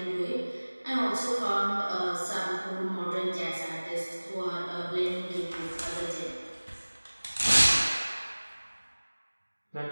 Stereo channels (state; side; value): inverted; both; correlation -1.00